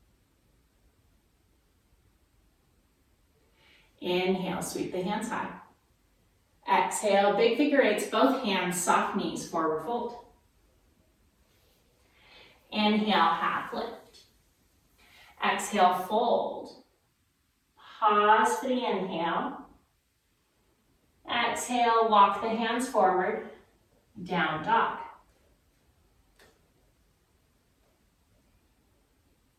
Inhale, sweep the hands high. Exhale, big figure eights, both hands, soft knees, forward fold. Inhale, half lift. Exhale, fold. Pause for the inhale. Exhale, walk the hands forward, down dog.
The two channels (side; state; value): both; identical; correlation 1.00